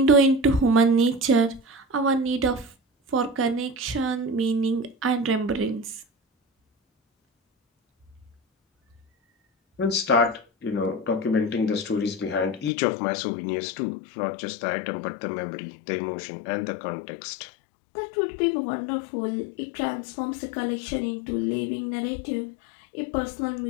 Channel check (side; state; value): right; drops out; at 12.7 s